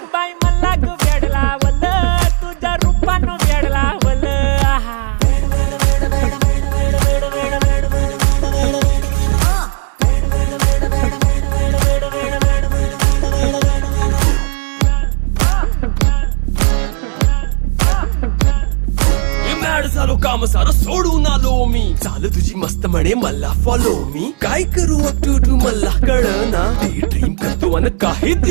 बाई मला ग वेड लावल तुझ्या रूपानं वेड लावल आहा झालो काम सारं सोडून आलो मी चाल तुझी मस्त म्हणे मला फॉलो मी काय करू टू मला कळना ती ड्रीम करतो अन काही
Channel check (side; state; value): left; quieter; 39.7 dB